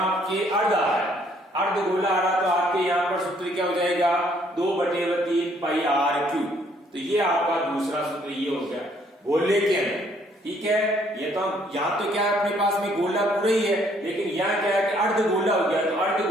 आपके अर्ध आ रहा है, अर्धगोला आ रहा तो आपके यहाँ पर सूत्र क्या हो जाएगा, 2/3 पाई आर क्यूब। तो ये आपका दूसरा सूत्र ये हो गया गोले के अंदर, ठीक है। ये तो यहाँ तो क्या है, अपने पास में गोला पूरा ही है, लेकिन यहाँ क्या है कि अर्धगोला हो गया, तो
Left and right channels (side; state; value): both; normal; correlation 0.65